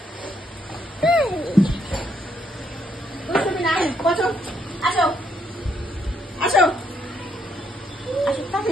তুমি না বসো, আসো আসো আসো, তাড়াতাড়ি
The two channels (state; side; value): normal; both; correlation 0.73